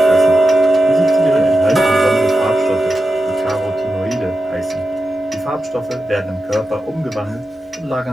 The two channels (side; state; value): both; normal; correlation 0.91